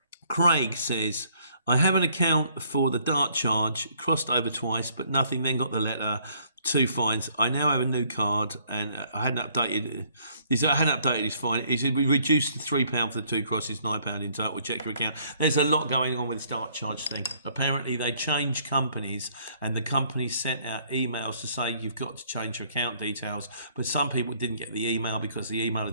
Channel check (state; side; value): inverted; both; correlation -0.64